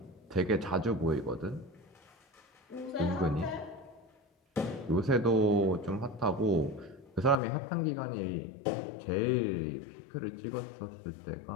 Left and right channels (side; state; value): right; drops out; at 7.4 s